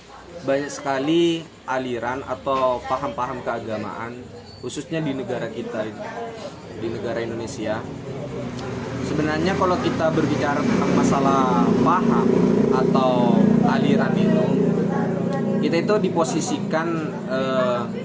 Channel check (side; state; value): both; identical; correlation 1.00